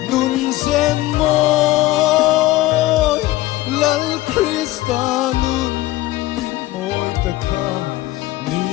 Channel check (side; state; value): right; quieter; 16.8 dB